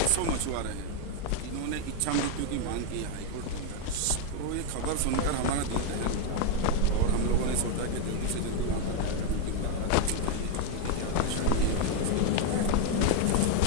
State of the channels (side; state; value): both; different; correlation 0.01